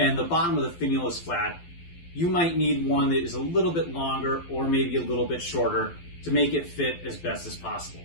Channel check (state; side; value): late; right; 12 ms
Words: the bottom of the finial is flat, you might need one that is a little bit longer or maybe a little bit shorter to make it fit as best as possible.